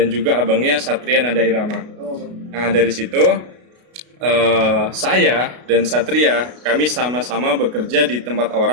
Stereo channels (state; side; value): late; left; 33 ms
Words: juga abangnya Satria Nada Irama. Nah dari situ saya dan Satria kami sama-sama bekerja di tempat